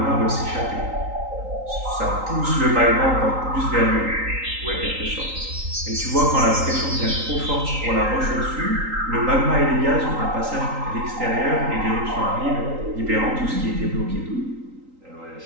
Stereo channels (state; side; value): late; left; 3.8 ms